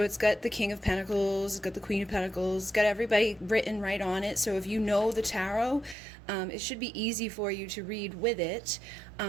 it's got the King of Pentacles, it's got the Queen of Pentacles, it's got everybody written right on it. So if you know the tarot, it should be easy for you to read with it.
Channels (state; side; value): drops out; left; at 6.0 s